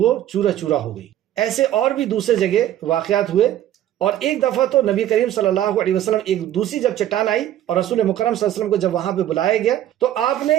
چورا چورا ہو گئی. ایسے اور بھی دوسرے جگہ واقعات ہوئے، اور ایک دفعہ تو نبی کریم صلی اللہ علیہ وسلم ایک دوسری جب چٹان آئی اور رسول مکرم صلی اللہ علیہ وسلم کو جب وہاں پہ بلایا گیا تو آپ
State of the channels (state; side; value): quieter; left; 12.2 dB